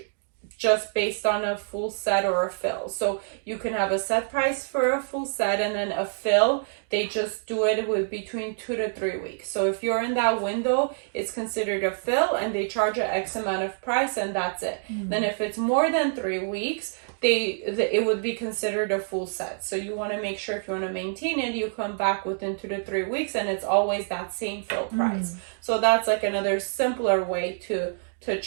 just based on a full set or a fill. So you can have a set price for a full set, and then a fill, they just do it with between 2 to 3 weeks. So if you're in that window, it's considered a fill, and they charge an X amount of price, and that's it. Then if it's more than 3 weeks, it would be considered a full set. So you want to make sure, if you want to maintain it, you come back within 2 to 3 weeks, and it's always that same fill price. So that's like another simpler way to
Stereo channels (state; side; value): silent; left; digital silence